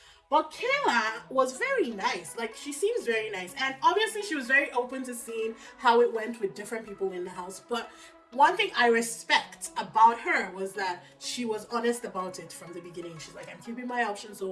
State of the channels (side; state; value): both; identical; correlation 1.00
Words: But Kayla was very nice. Like, she seems very nice. And obviously she was very open to seeing how it went with different people in the house. But one thing I respect about her was that she was honest about it from the beginning. She's like, I'm keeping my options